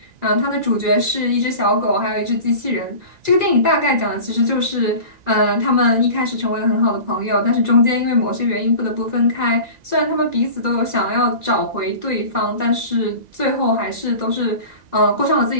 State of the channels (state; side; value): late; left; 2.0 ms